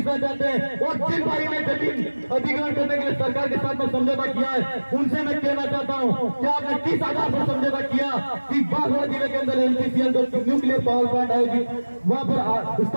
चाहते हैं और जिन भाई ने जमीन अधिग्रहण करने के लिए सरकार के साथ में समझौता किया है उनसे मैं कहना चाहता हूँ कि आपने 30,000 पर समझौता किया कि बागड़ जिले के अंदर एनपीसीएल जो न्यूक्लियर पावर प्लांट आएगी वहाँ पर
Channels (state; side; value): inverted; both; correlation -1.00